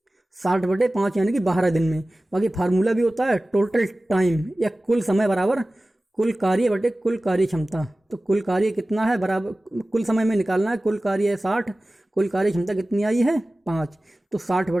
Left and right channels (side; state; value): both; normal; correlation 0.97